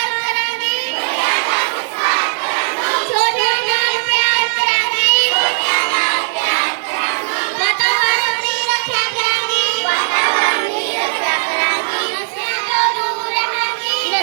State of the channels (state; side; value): silent; left; 66 dB below the other